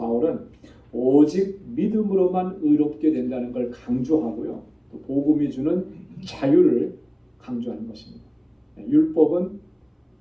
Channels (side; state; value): both; identical; correlation 1.00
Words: 오직 믿음으로만 의롭게 된다는 걸 강조하고요. 또 복음이 주는 자유를 강조하는 것입니다. 율법은